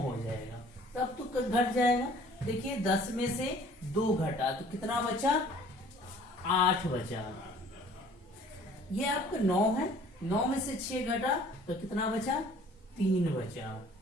हो जाएगा। तब तो घट जाएगा। देखिए 10 में से 2 घटा तो कितना बचा, 8 बचा। ये आपका 9 है, 9 में से 6 घटा तो कितना बचा, 3 बचा।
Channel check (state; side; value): normal; both; correlation 0.53